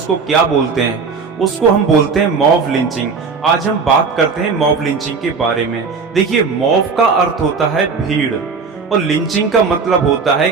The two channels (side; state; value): left; quieter; 5.0 dB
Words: क्या बोलते हैं? उसको हम बोलते हैं मॉब लिंचिंग। आज हम बात करते हैं मॉब लिंचिंग के बारे में। देखिए, मॉब का अर्थ होता है भीड़ और लिंचिंग का मतलब होता है